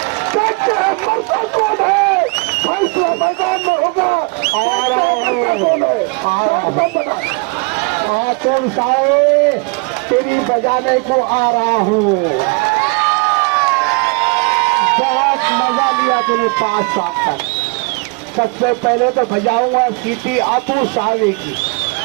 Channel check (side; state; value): left; quieter; 31.7 dB